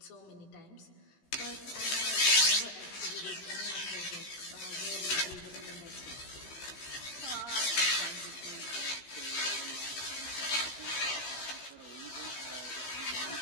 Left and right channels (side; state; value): right; late; 15 ms